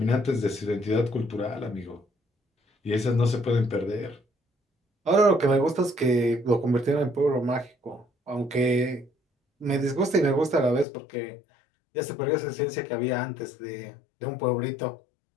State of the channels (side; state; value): right; drops out; at 10.9 s